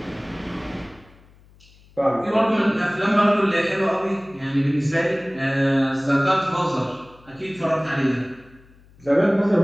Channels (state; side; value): noise; left; hum, 27 dB below the sound